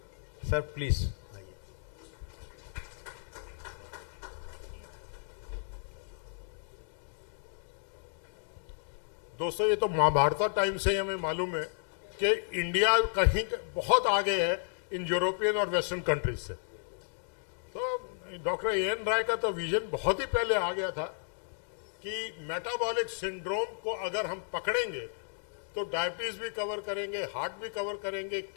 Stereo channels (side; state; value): right; silent; digital silence